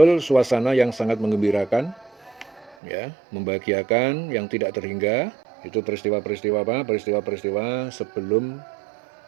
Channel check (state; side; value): drops out; left; at 2.8 s